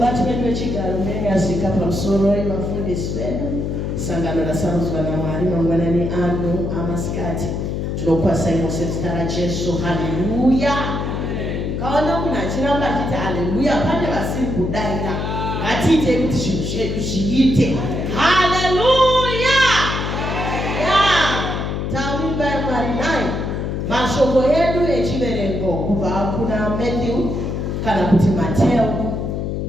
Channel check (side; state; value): left; noise; hum, 2 dB below the sound